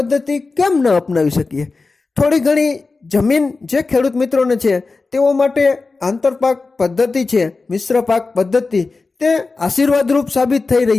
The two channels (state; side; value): quieter; right; 3.9 dB